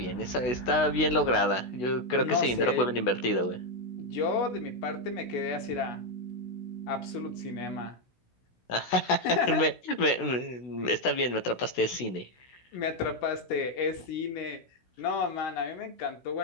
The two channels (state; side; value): late; right; 16 ms